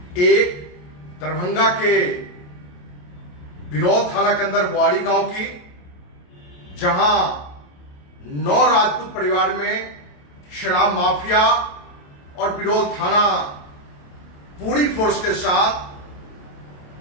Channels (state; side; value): late; right; 28 ms